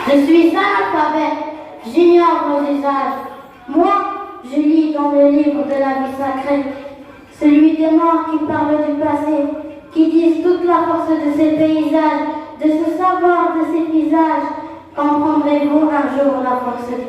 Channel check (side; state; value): both; identical; correlation 1.00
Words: Je suis analphabète, j'ignore nos usages. Moi, je lis dans le livre de la vie sacrée, celui des morts qui parle du passé, qui disent toute la force de ces paysages, de ce savoir de ces visages. Comprendrez-vous un jour la force